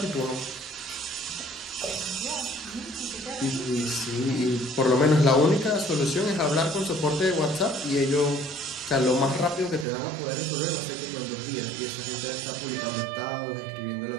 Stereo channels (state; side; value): drops out; left; at 9.9 s